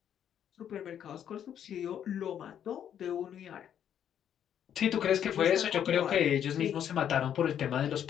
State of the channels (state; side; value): quieter; right; 9.4 dB